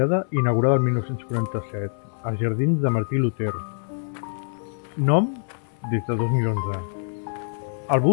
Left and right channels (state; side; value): silent; right; 62 dB below the other